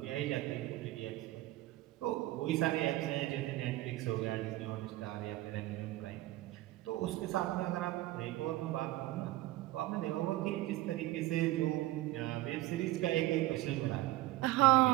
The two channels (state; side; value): quieter; left; 17.2 dB